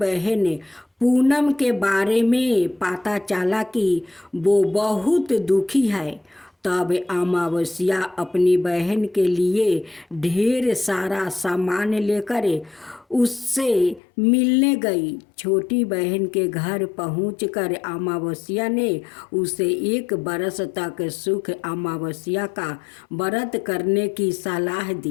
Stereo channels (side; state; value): right; drops out; at 14.0 s